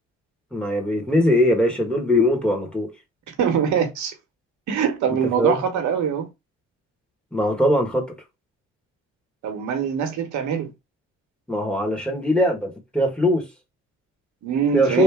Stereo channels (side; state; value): both; normal; correlation 0.47